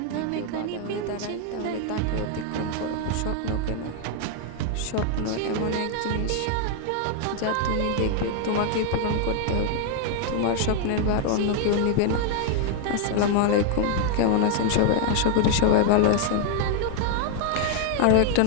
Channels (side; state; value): both; different; correlation 0.00